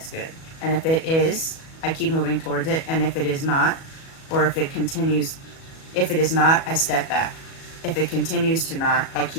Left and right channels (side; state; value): right; late; 37 ms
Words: good? And if it is, I keep moving towards it. And if it is not, or if it is not, I step back. If it continues to not, I